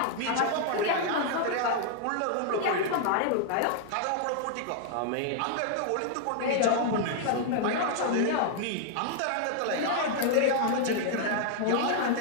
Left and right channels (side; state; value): both; different; correlation -0.01